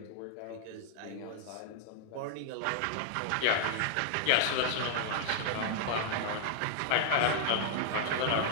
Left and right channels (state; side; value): different; both; correlation 0.00